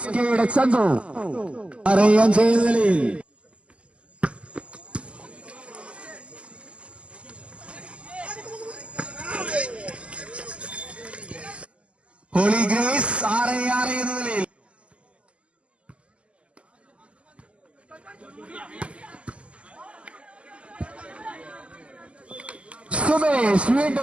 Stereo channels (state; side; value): late; left; 0.057 ms